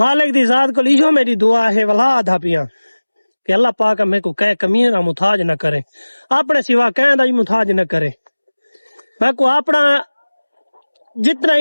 दी जात को लियो मेरी दुआ है वला आधा पिया कि अल्लाह पाक मेरे को कह कमीने ना मुताज न करे अपने सिवा कह दा ही मुताज न करे मैं को अपना जितना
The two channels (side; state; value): both; inverted; correlation -1.00